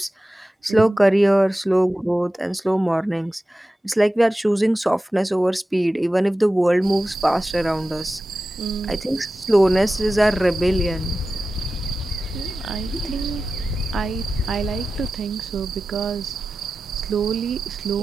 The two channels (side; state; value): both; normal; correlation 0.94